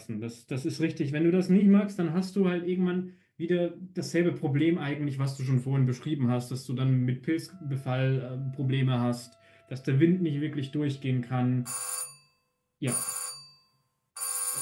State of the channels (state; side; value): identical; both; correlation 1.00